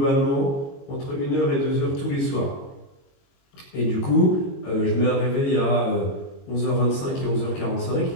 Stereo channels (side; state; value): right; late; 22 ms